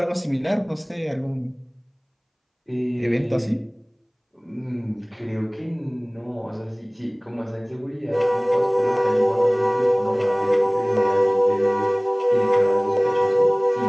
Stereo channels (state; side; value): identical; both; correlation 1.00